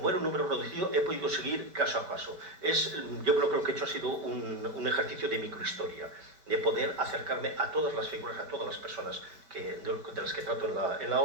era un número reducido, he podido seguir caso a caso. Yo creo que he hecho ha sido un ejercicio de microhistoria, de poder acercarme a todas las figuras, a todas las personas de las que trato en la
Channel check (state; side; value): late; left; 4.7 ms